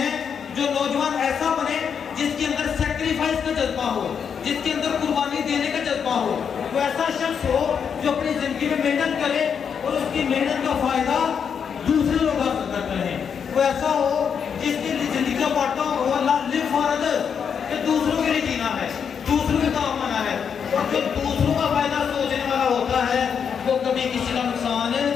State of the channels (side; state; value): right; quieter; 7.1 dB